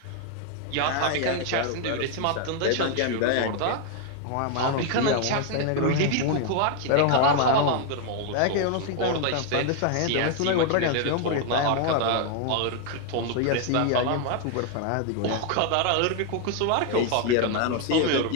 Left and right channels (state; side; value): different; both; correlation 0.00